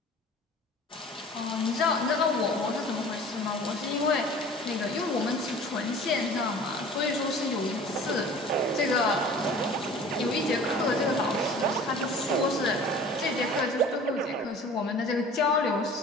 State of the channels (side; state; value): both; normal; correlation 0.45